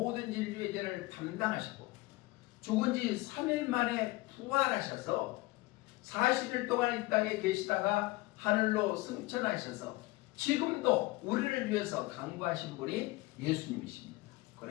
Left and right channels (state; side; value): quieter; right; 20.9 dB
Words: 인류의 죄를 담당하시고 죽은 지 3일 만에 부활하셔서 40일 동안 이 땅에 계시다가 하늘로 승천하셔서 지금도 우리를 위해서 강구하신 분이 예수님이십니다.